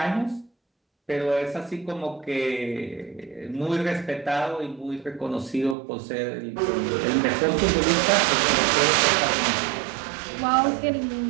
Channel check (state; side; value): drops out; left; at 5.8 s